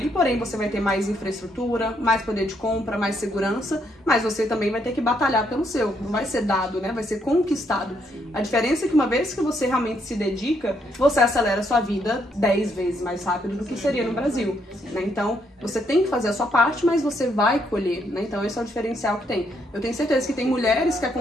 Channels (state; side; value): normal; both; correlation 0.74